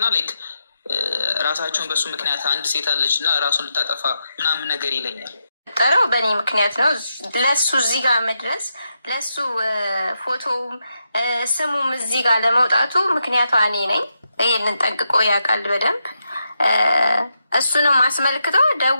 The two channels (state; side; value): inverted; both; correlation -0.84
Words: ላይክ ራሳቸውን በሱ ምክንያት አንድ ሴት አለች እና ራሱን ልታጠፋ ምናምን ነገር ይለኛል። ጠረው በእኔ ምክንያት ነው ለሱ እዚህ ጋር መድረስ ለሱ ፎቶውም ስሙም እዚህ ጋር ለመውጣቱ ምክንያቷ እኔ ነኝ። ይህንን ጠንቅቆ ያውቃል በደንብ። እሱንም አስመልክቶ